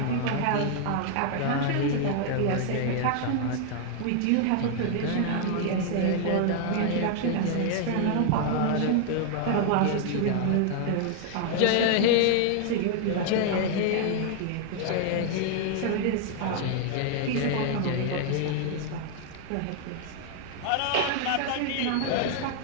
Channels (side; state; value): both; different; correlation 0.00